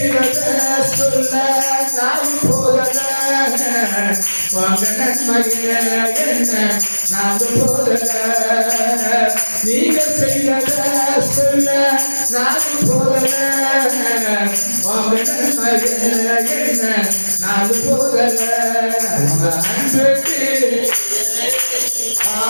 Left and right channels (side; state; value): both; inverted; correlation -1.00